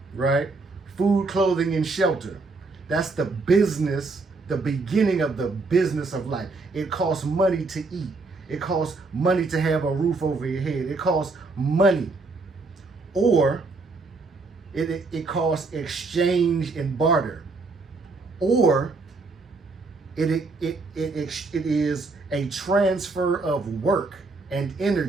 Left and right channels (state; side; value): quieter; left; 3.7 dB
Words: right? Food, clothing, and shelter. That's the business, the beginning of the business of life. It costs money to eat. It costs money to have a roof over your head. It costs money. Or it costs exchange and barter. Or it is a transfer of work and